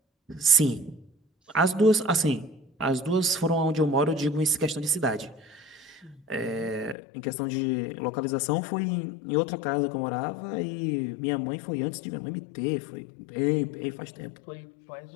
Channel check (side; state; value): right; drops out; at 7.0 s